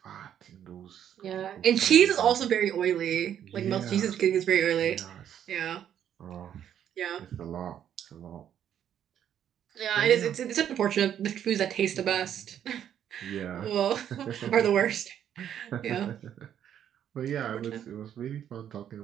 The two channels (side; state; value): left; quieter; 9.8 dB